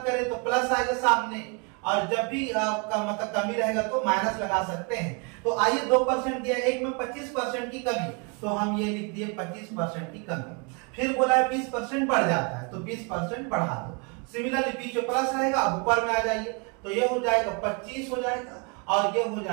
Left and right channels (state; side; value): quieter; left; 33.1 dB